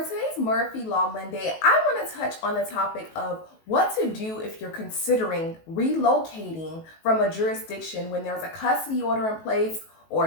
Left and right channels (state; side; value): late; right; 19 ms